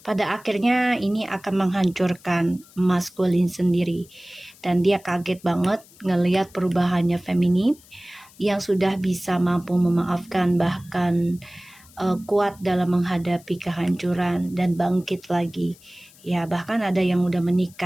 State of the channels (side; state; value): left; noise; hiss, 25 dB below the sound